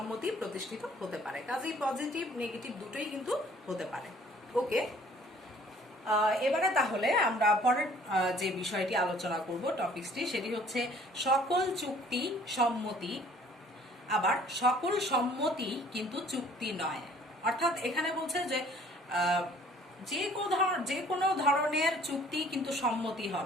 প্রতিষ্ঠিত হতে পারে। কাজেই পজিটিভ নেগেটিভ দুটোই কিন্তু হতে পারে। ওকে, এবারে তাহলে আমরা পরের যে বিষয়টি আলোচনা করব, টপিকসটি, সেটি হচ্ছে সকল চুক্তি সম্মতি, আবার সকল সম্মতি কিন্তু চুক্তি নয়। অর্থাৎ এখানে বলছে যে যে কোনো ধরনের চুক্তি কিন্তু সম্মতি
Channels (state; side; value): normal; both; correlation 0.56